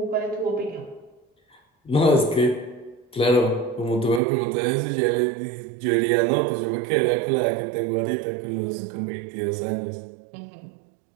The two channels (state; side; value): drops out; left; at 4.2 s